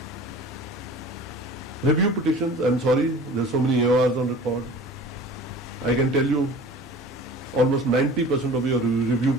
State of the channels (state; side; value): normal; both; correlation 0.42